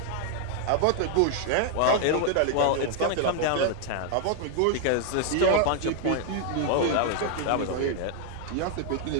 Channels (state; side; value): different; both; correlation 0.00